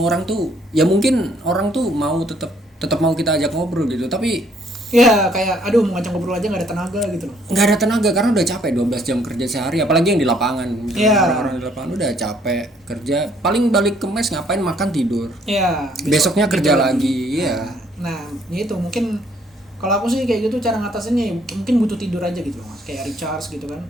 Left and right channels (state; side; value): normal; both; correlation 0.65